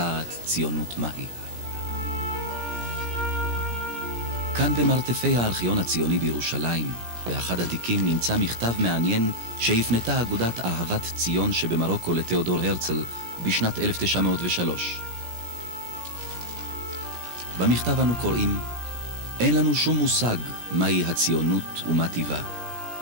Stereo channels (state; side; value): late; left; 17 ms